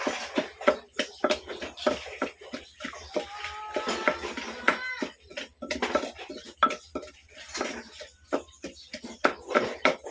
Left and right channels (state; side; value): identical; both; correlation 1.00